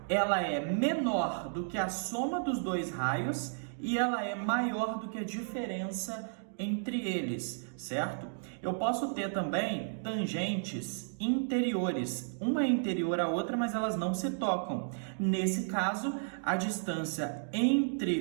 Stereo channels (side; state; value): left; silent; digital silence